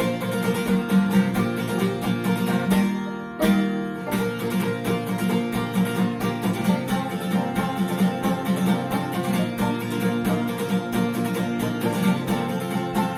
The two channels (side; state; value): both; identical; correlation 1.00